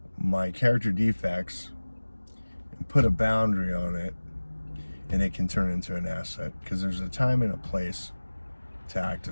my character defects and put a boundary on it, and it can turn into an asset, because there's a time and a place to act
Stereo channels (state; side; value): inverted; both; correlation -1.00